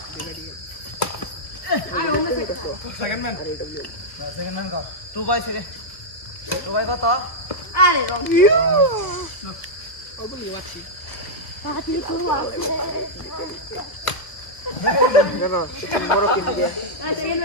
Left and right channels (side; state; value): right; late; 1.2 ms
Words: আয় ওমে সেকেন্ড ম্যান সেকেন্ড ম্যান কর 2 বাই সেকেন্ড 2 বাই কত আরে রং পাতি তো আছে এই সেকেন্ড